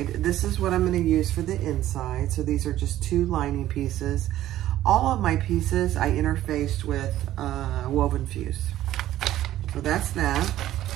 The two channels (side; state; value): left; quieter; 13.6 dB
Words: This is what I'm gonna use for the inside. So these are just 2 lining pieces. All of my pieces I interfaced with woven fuse. So that's that.